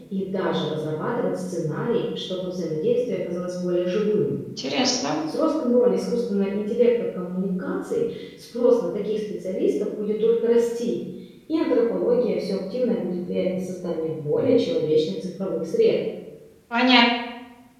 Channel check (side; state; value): both; identical; correlation 1.00